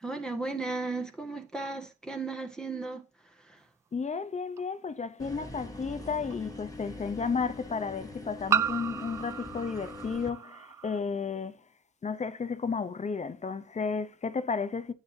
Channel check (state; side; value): normal; both; correlation 0.47